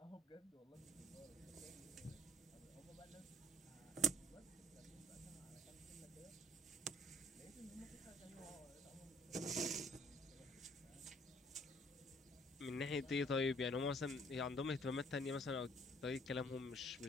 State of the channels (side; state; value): both; normal; correlation 0.60